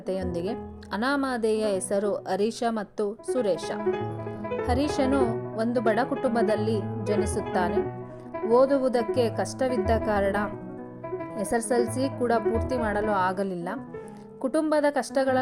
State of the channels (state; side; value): identical; both; correlation 1.00